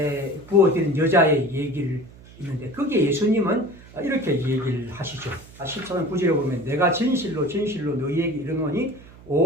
부어드린 여자의 얘기를 있는데 거기에 예수님은 이렇게 얘기를 하시죠. 14장 9절에 보면 내가 진실로 진실로 너희에게 이르노니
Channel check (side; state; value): right; noise; hum, 21 dB below the sound